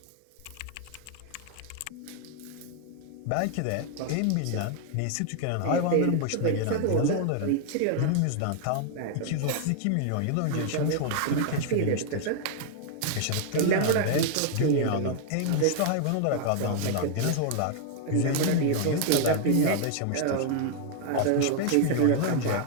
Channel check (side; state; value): both; different; correlation 0.00